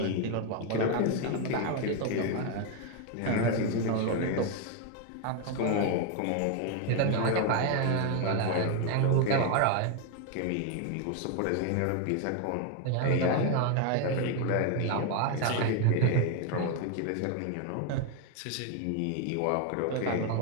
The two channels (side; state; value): both; different; correlation 0.01